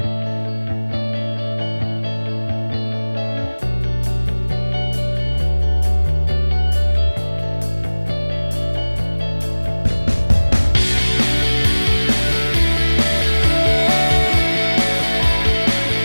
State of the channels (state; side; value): inverted; both; correlation -1.00